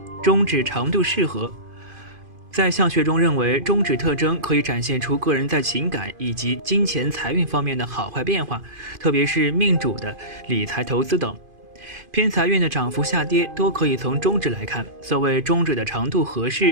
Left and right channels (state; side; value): late; left; 2.5 ms